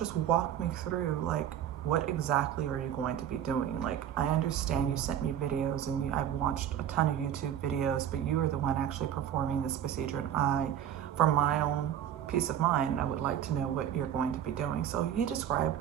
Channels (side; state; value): left; quieter; 10.2 dB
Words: walk me through, like, what exactly are you going to be doing? Like, I understand you sent me videos and I've watched a ton of YouTube videos, but you are the one actually performing this procedure. And for my own peace of mind, I would like to know what you're going to be doing. So he described